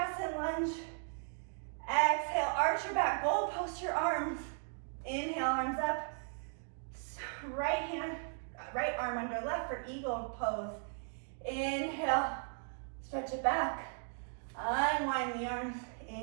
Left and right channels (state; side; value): silent; left; 53 dB below the other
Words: lunge. Exhale, arch your back, goal post your arms. Inhale, arms up. Right arm under left for eagle pose. Inhale, stretch it back. Unwind the arms.